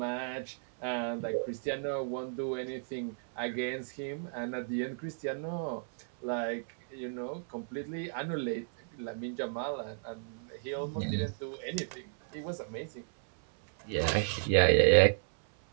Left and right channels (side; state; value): left; silent; 56 dB below the other